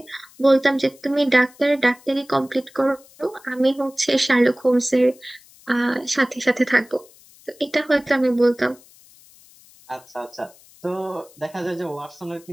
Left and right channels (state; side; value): noise; left; hiss, 26 dB below the sound